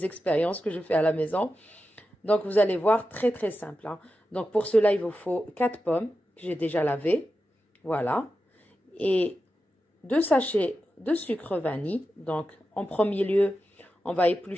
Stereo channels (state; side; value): normal; both; correlation 0.90